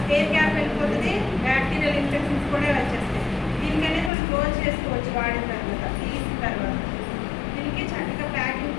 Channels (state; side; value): drops out; right; at 4.1 s